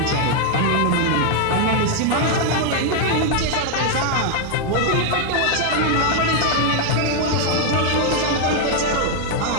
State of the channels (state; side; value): different; both; correlation 0.00